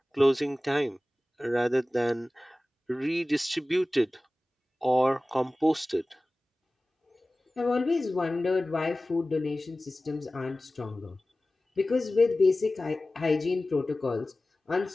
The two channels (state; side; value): normal; both; correlation 0.97